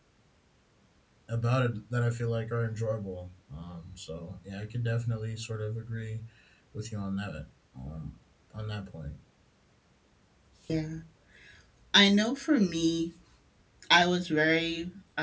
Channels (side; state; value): both; identical; correlation 1.00